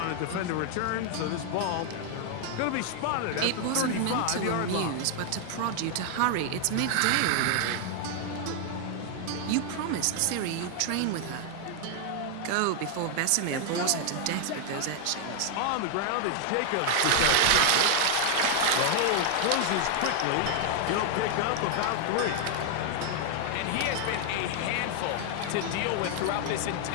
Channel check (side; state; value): both; different; correlation 0.00